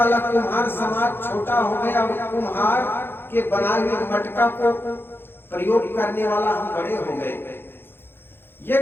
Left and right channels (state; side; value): late; right; 0.10 ms